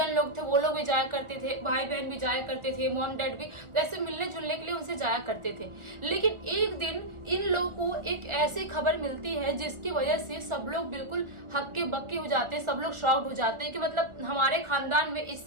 लोग थे वो लोग भी जाया करते थे, भाई बहन भी जाया करते थे, मॉम डैड भी ऐसे मिलने जुलने के लिए उनसे जाया करते थे। लेकिन एक दिन इन लोगों को एक ऐसी खबर मिलती है जिसकी वजह से सब लोग बिल्कुल हक्के बक्के हो जाते हैं, सब लोग शॉक्ड हो जाते हैं कि मतलब हमारे खानदान में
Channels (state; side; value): late; left; 1.4 ms